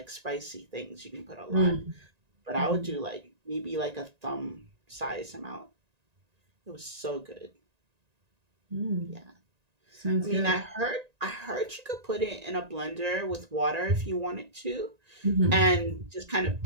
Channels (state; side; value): late; left; 1.9 ms